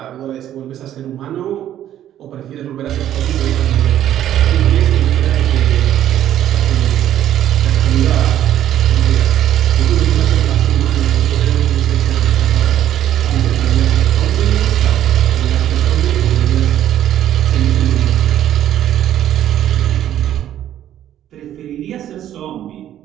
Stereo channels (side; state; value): left; quieter; 11.6 dB